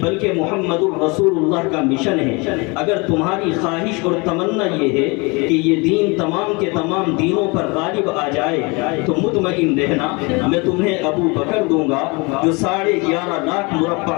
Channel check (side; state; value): right; quieter; 28.0 dB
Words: بلکہ محمد الرسول اللہ کا مشن ہے۔ اگر تمہاری خواہش اور تمنا یہ ہے کہ یہ دین تمام کے تمام دینوں پر غالب آ جائے تو مطمئن رہنا میں تمہیں ابو بکر دوں گا جو 11.5 لاکھ